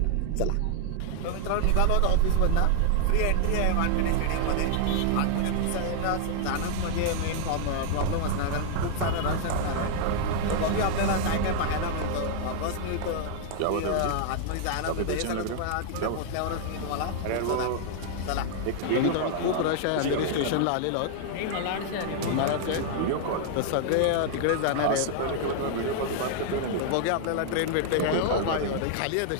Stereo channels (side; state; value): both; different; correlation 0.00